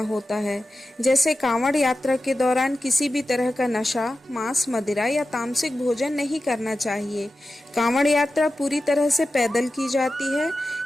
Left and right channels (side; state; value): both; normal; correlation 0.93